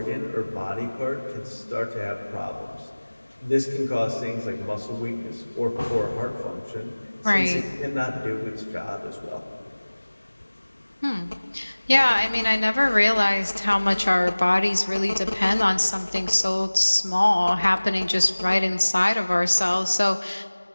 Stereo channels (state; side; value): inverted; both; correlation -1.00